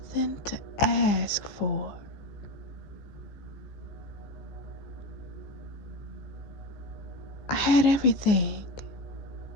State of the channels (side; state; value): right; late; 15 ms